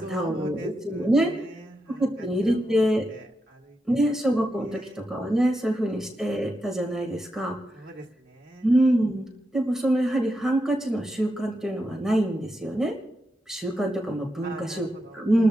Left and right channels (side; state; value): both; normal; correlation 0.86